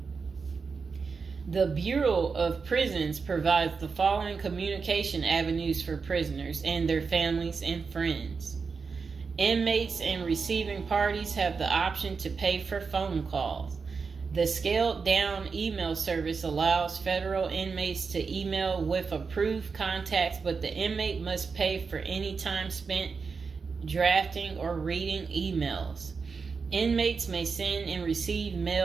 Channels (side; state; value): left; quieter; 5.1 dB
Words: The Bureau of Prisons provides the following communication avenues for prisoners and their families and friends. Inmates and receiving parties have the option to pay for phone calls. The scaled-down email service allows federal inmates to email with approved contacts, but the inmate must pay for any time spent drafting or reading emails. Inmates may send and receive